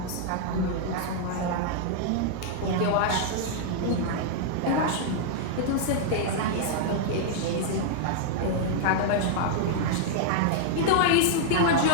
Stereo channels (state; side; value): different; both; correlation -0.01